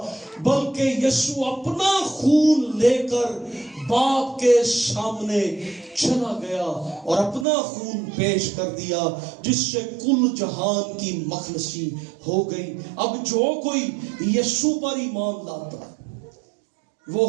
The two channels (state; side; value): drops out; left; at 7.5 s